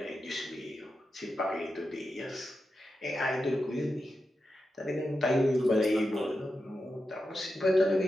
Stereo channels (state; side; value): normal; both; correlation 0.89